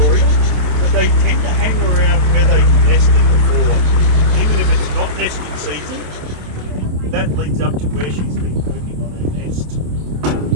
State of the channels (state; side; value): late; left; 27 ms